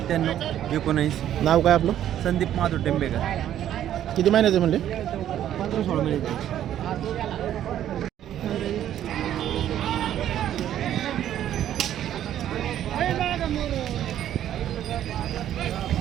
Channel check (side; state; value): left; quieter; 11.3 dB